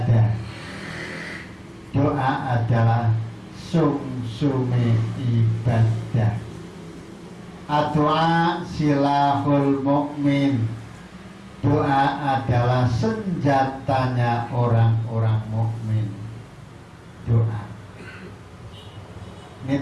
Doa adalah sumsumi ibadah. Ad-du'a silahul mu'min. Doa adalah senjatanya orang-orang mukmin. Doa.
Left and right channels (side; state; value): both; identical; correlation 1.00